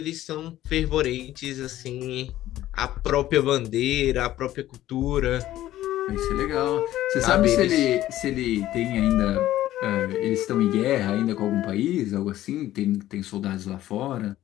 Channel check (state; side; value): quieter; right; 14.1 dB